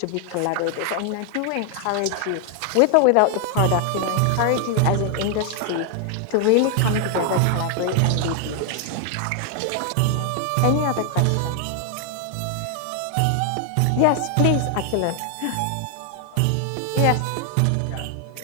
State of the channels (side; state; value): both; different; correlation 0.00